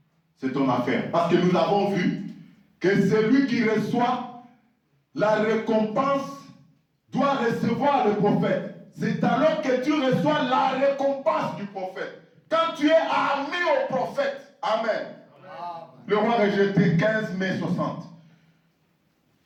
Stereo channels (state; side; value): identical; both; correlation 1.00